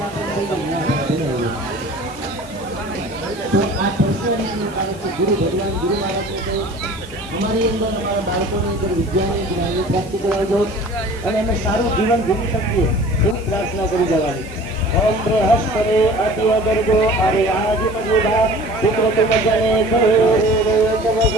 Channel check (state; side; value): noise; left; hiss, 22 dB below the sound